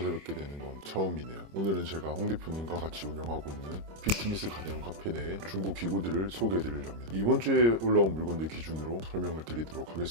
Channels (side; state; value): left; late; 26 ms